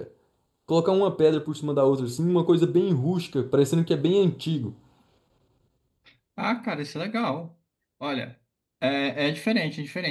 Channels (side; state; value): both; identical; correlation 1.00